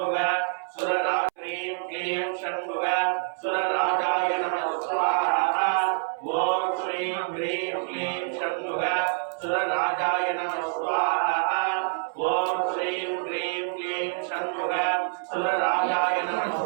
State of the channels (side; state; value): left; silent; 60 dB below the other